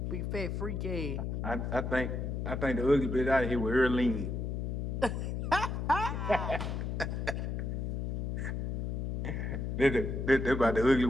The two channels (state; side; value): noise; left; hum, 2 dB below the sound